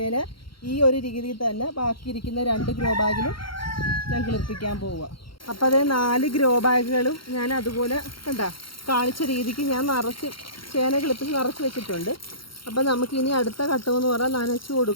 ഈ ഒരു രീതിയിൽ തന്നെ ബാക്കിയിരിക്കുന്ന 2 ഗ്രോ ബാഗിലും ഞാൻ കിളിപ്പിക്കാൻ പോവുക. അപ്പോൾ അത് 4 ഗ്രോ ബാഗുകളും ഞാൻ അതുപോലെ കണ്ടാ കാണിച്ച രീതിക്ക് ഞാൻ ചേന കിളിപ്പിച്ച് നിറച്ച് വെച്ചിട്ടുണ്ട്. അപ്പോൾ നമുക്കിനി അടുത്ത ഘട്ടമെന്ന് പറഞ്ഞാൽ നനച്ച്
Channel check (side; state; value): right; late; 0.73 ms